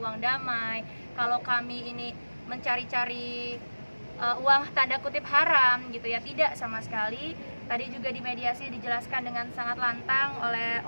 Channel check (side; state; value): both; inverted; correlation -1.00